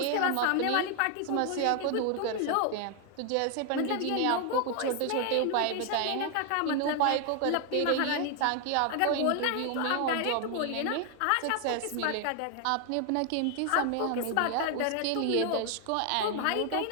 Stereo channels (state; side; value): different; both; correlation 0.00